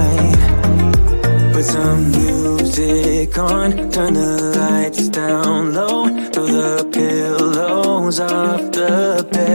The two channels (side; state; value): both; inverted; correlation -1.00